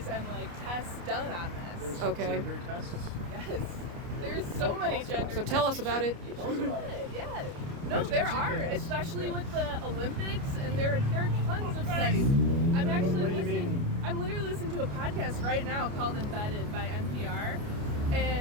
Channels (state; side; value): late; left; 29 ms